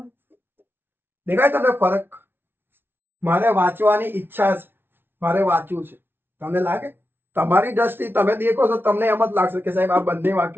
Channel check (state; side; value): late; left; 0.11 ms